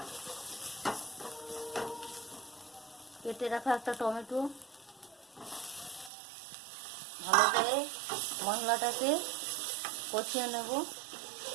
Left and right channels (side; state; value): left; drops out; at 6.1 s